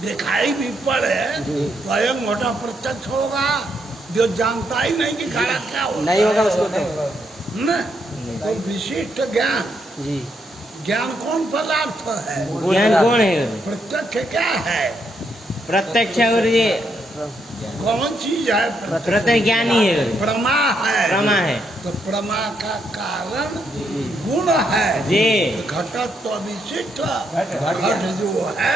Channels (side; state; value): both; normal; correlation 0.77